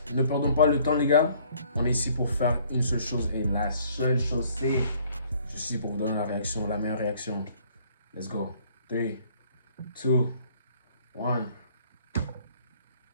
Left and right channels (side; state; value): both; inverted; correlation -0.60